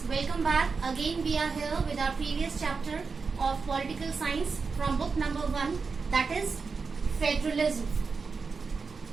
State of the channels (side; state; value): left; quieter; 4.8 dB